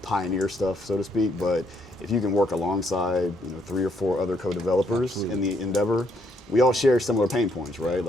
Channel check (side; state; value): both; normal; correlation 0.72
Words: pioneer stuff, so to speak, but if you can work alongside, you know, 3 or 4 other co-developers in the endeavor, we all share similar pain points, right?